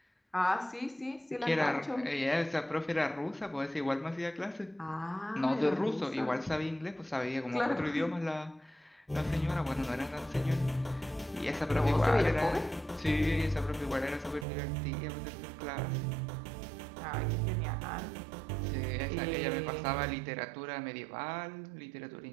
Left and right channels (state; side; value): drops out; left; at 14.5 s